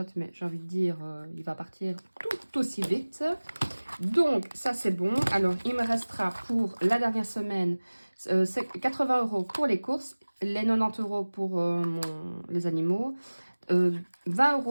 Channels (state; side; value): inverted; both; correlation -1.00